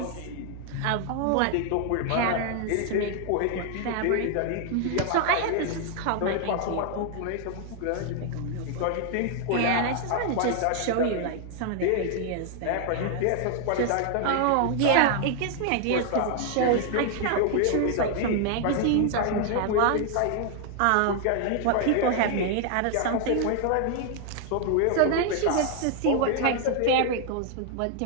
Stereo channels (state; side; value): different; both; correlation 0.00